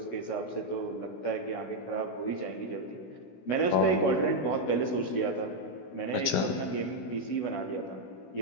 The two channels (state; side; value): late; right; 16 ms